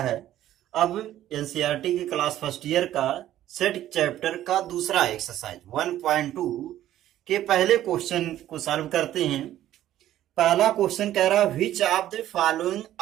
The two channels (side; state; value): left; quieter; 12.8 dB